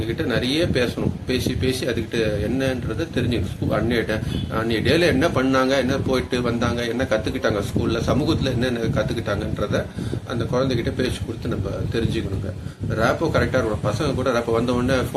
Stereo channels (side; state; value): both; identical; correlation 1.00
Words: நிறைய பேசணும். பேசி அதுக்கிட்ட என்னன்றதை தெரிஞ்சுக்கணும். அன்னைய டேல என்ன பண்ணாங்க, என்ன போயிட்டு வந்தாங்க, என்ன கற்றுக்கிட்டாங்க ஸ்கூலில், சமூகத்தில் என்னென்ன கற்றுக்கிட்டாங்கன்றத அந்த குழந்தைகிட்ட பேச்சு கொடுத்து நம்ம தெரிஞ்சுக்கணுங்க. ரேப்போ கரெக்டாக இருக்கணும். பசங்க கூட ரேப்போ வந்த உடனே